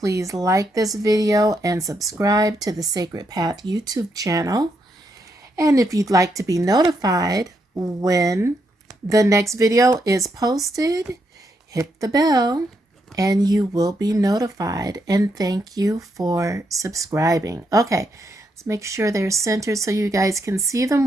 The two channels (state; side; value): normal; both; correlation 0.79